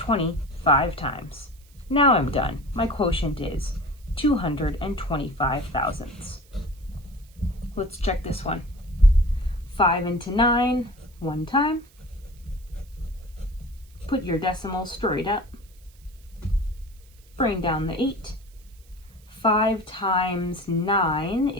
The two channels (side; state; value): right; noise; hiss, 29 dB below the sound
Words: 5 times. Now I'm done. My quotient is 225 thousandths. Let's check this one. 5 into 9, 1 time. Put your decimal straight up. Bring down the 8. 5 times 9